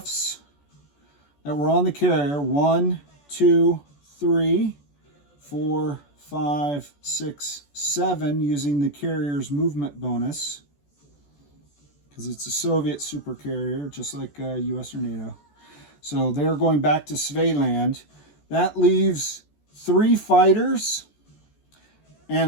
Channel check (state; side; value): late; right; 14 ms